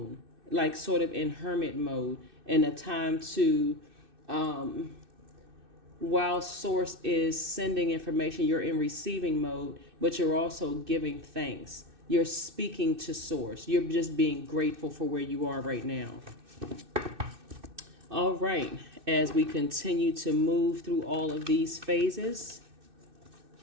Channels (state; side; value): late; left; 2.6 ms